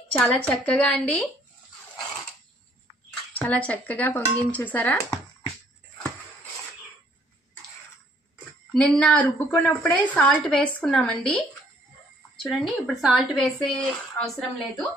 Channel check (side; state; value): both; normal; correlation 0.63